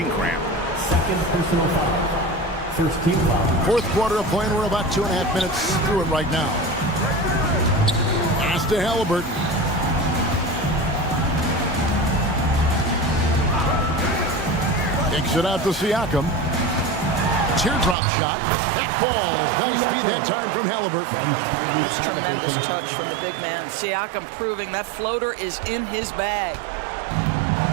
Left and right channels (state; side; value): drops out; left; at 17.9 s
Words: cramp. Second personal foul. First team foul. Fourth quarter of play, and we're about 2.5 minutes through it right now. Pass to Halliburton. Kicks it out to Siakam. teardrop shot. That falls. Nice speed that time from Halliburton. That's tremendous touch from the big man. Siakam proving that floater is in his bag.